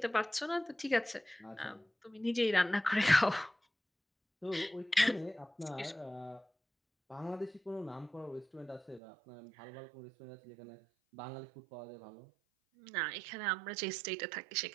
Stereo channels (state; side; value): drops out; left; at 9.0 s